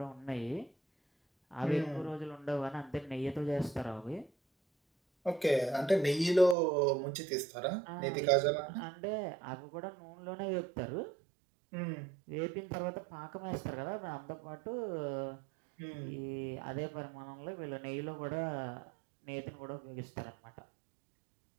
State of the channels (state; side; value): drops out; left; at 6.6 s